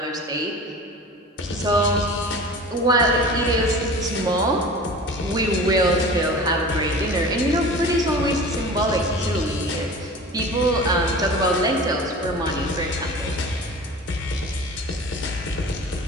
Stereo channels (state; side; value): normal; both; correlation 0.38